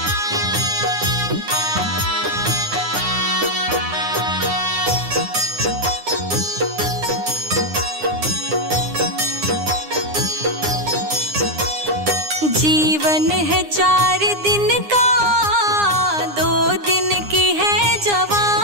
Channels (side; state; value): left; late; 9.8 ms